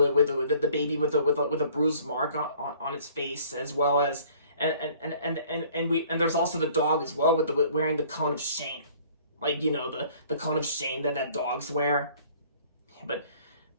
the baby with a bruised mark on its face, as well as and there's also the dog as well with wearing the cone of shame, like the cone of shame that dogs wear. But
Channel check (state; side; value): inverted; both; correlation -0.54